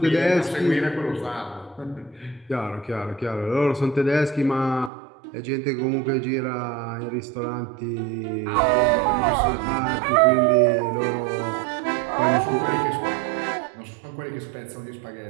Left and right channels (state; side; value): drops out; left; at 4.9 s